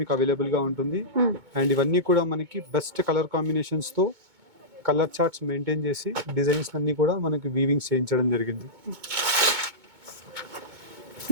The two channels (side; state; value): left; late; 2.2 ms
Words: మీకు అవైలబుల్ గా ఉంటుంది. అండ్ ఇవన్నీ కూడా మనకి బెస్ట్ కలర్ కాంబినేషన్స్ తో కలర్ చార్ట్స్ మెయింటైన్ చేసి డిజైన్స్ అన్ని కూడా మనకి వీవింగ్స్ చేయించడం జరిగింది.